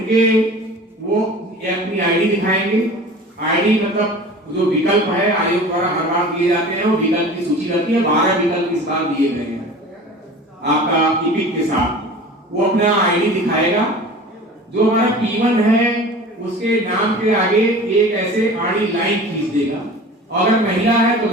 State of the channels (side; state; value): both; normal; correlation 0.40